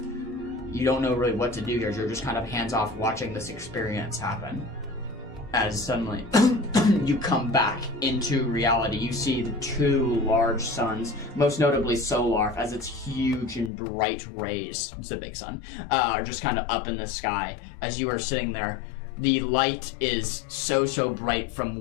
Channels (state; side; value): drops out; right; at 13.7 s